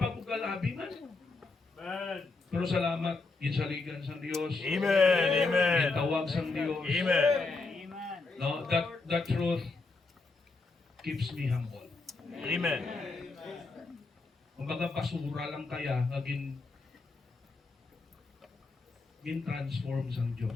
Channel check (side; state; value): right; quieter; 3.7 dB